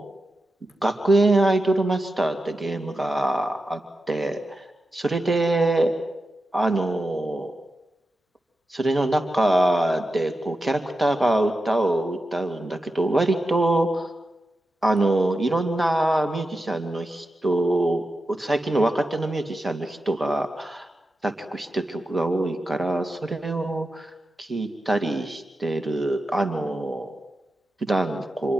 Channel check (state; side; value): normal; both; correlation 0.90